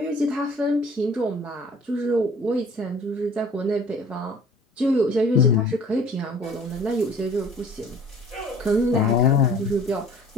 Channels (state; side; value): normal; both; correlation 0.49